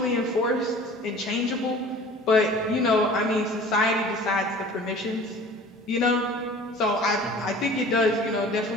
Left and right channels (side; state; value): both; normal; correlation 0.44